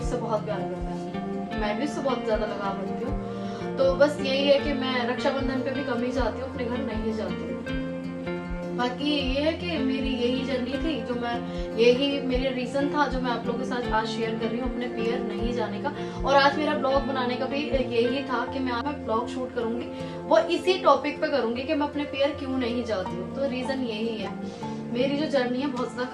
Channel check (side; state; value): both; identical; correlation 1.00